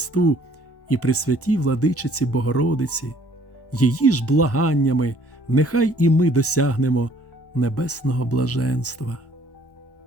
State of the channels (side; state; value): right; late; 1.1 ms